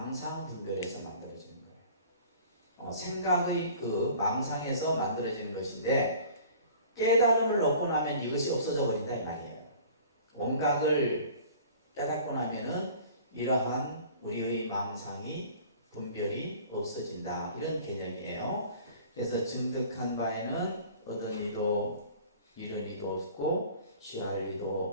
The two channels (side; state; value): both; inverted; correlation -0.47